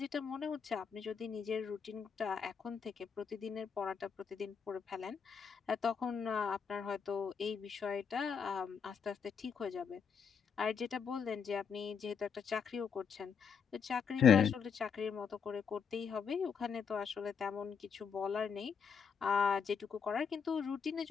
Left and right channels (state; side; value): quieter; right; 6.5 dB